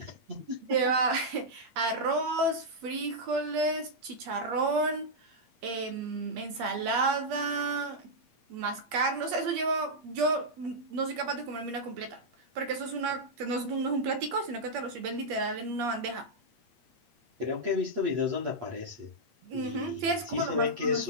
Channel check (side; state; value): left; late; 8.5 ms